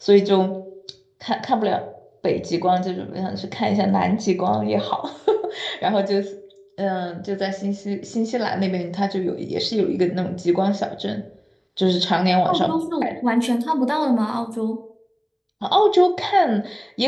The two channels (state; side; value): identical; both; correlation 1.00